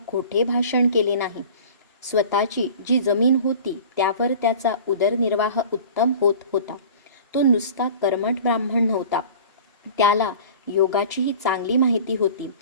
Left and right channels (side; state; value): both; inverted; correlation -0.42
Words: खोटे भाषण केले नाही. स्वतःची जी जमीन होती त्यावर त्याचा उदरनिर्वाह उत्तम होत होता. तो नुसता कर्मठ ब्राह्मण नव्हता. त्याला योगाचीही चांगली माहिती होती